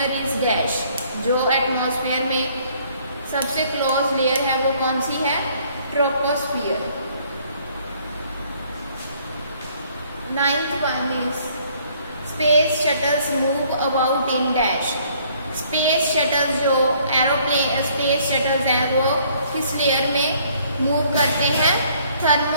is dash. जो atmosphere में सबसे क्लोज लेयर है वो कौन सी है? Troposphere. Ninth one is space shuttles move about in dash. Space shuttles जो एरोप्लेन स्पेस शटल्स हैं वो किस लेयर में मूव करते हैं?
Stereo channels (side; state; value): both; inverted; correlation -0.62